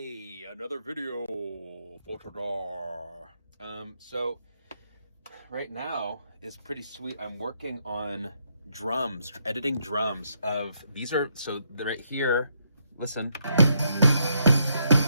another video for today. So right now is pretty sweet. I'm working on drums, editing drums of these are so they're right here. Listen.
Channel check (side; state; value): both; inverted; correlation -0.76